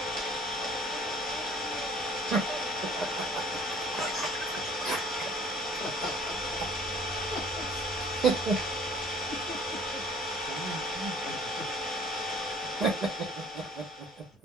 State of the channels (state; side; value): normal; both; correlation 0.52